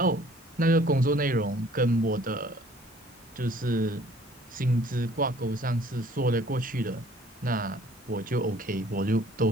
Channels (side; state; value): both; normal; correlation 0.55